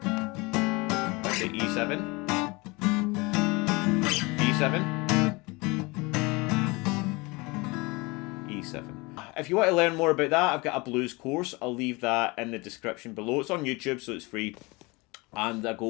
Back to E7. E7. E7. If you want to learn more about that, I've got a blues course. I'll leave that in the description below. It's on YouTube, so it's free. And I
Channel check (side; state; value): right; quieter; 25.4 dB